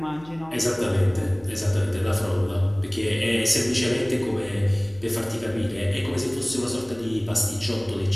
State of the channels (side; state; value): left; noise; hum, 24 dB below the sound